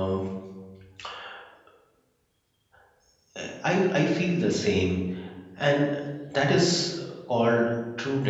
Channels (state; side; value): identical; both; correlation 1.00